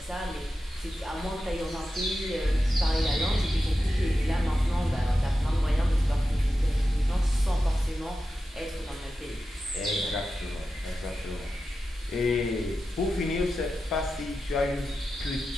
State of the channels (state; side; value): normal; both; correlation 0.91